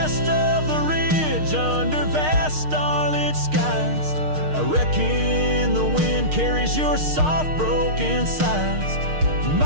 of the ridge, under vast starlit skies, I reckon the wind carries your soft broken sighs.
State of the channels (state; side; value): late; left; 6.5 ms